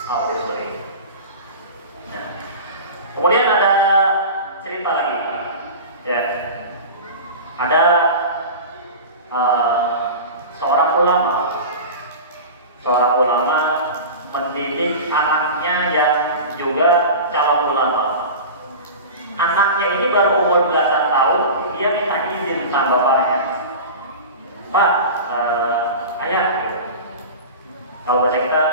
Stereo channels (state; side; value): inverted; both; correlation -0.31